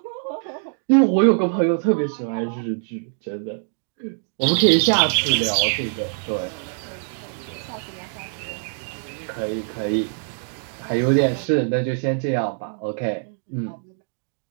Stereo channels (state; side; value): silent; left; digital silence